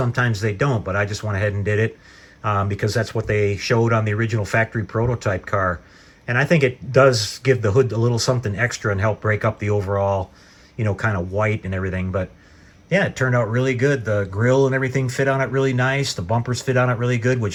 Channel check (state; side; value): identical; both; correlation 1.00